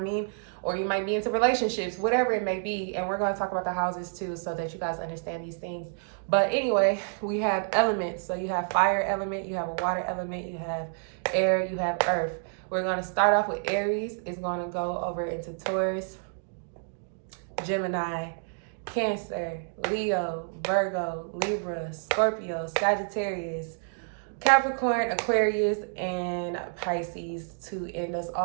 Or you might be into relationships, whatever it may be. And we're going to talk about the houses too, so that you guys understand these things. But anyway, we have elements. So you have fire element, you have a water element, you have air, you have earth. We're going to start off with Aries. It's going to go over into Taurus, Gemini, Cancer, Leo, Virgo, Libra, Scorpio, Sagittarius, Capricorn, Aquarius, and Pisces to end us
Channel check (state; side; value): silent; left; digital silence